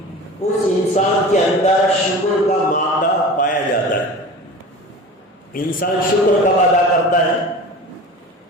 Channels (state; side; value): normal; both; correlation 0.36